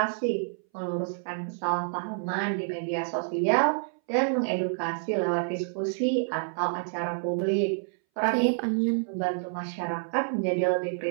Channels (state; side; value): silent; left; 59 dB below the other